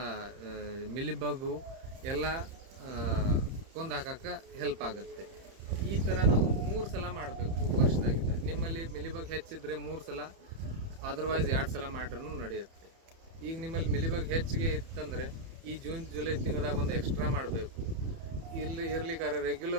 ಮಿಲಿಬಗ್ಗು ಎಲ್ಲ ಕೊಂದು ಹಾಕಕ್ಕೆ ಹೆಲ್ಪ್ ಆಗುತ್ತೆ. ಈ ಥರ ನಾವು 3 ಸಲ ಮಾಡಬೇಕು ವರ್ಷದಾಗಿದ್ದ. ನಿಮ್ಮಲ್ಲಿ ಮಿಲಿಬಗ್ ಹೆಚ್ಚಿದ್ರೆ 3 ಸಲ, ಅದರ್ವೈಸ್ 2 ಸಲ ಮಾಡ್ರೂ ನಡೆಯುತ್ತೆ. ಈಗ ನಿಮ್ಮಲ್ಲಿ ಮಿಲಿಬಗ್ ಹೆಚ್ಚಿಗೆ ಇತ್ತಂದರೆ ಈ ಜೂನ್ ಜುಲೈ ತಿಂಗಳದಾಗ ಒಂದು ಎಕ್ಸ್ಟ್ರಾ ಮಾಡಬೇಕು. ಇರ್ಲಿಕ್ಕಾರೆ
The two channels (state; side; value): late; left; 30 ms